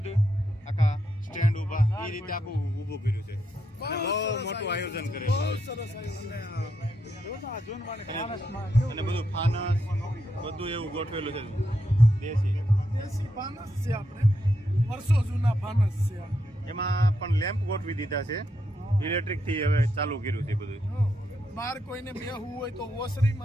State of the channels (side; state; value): both; normal; correlation 0.82